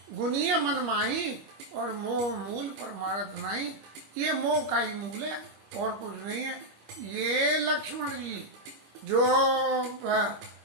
गुनिय मन माही, और मोह मूल पर मारत नहीं। ये मोह का ही मूल है और कुछ नहीं है। ये लक्ष्मण जी जो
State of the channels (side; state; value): left; late; 25 ms